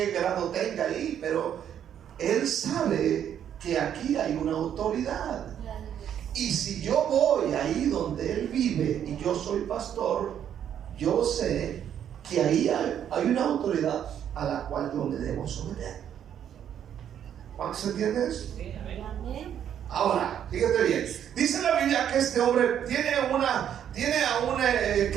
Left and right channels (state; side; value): quieter; left; 9.5 dB